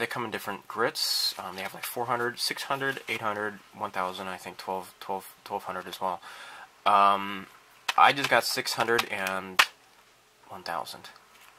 come in different grits. They have like 400, 600, 800, 1000, I think 1200 as well. I just got 600 and 1000.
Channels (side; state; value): both; identical; correlation 1.00